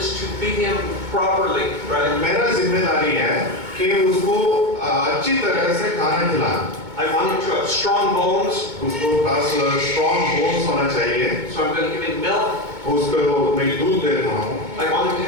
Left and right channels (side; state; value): left; late; 2.2 ms